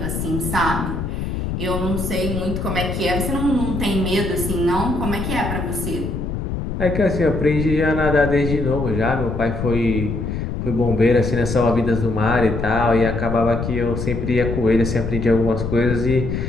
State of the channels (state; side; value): noise; left; rumble, 3 dB below the sound